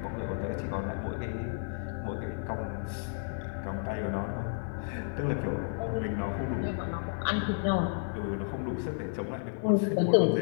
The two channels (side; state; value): right; silent; digital silence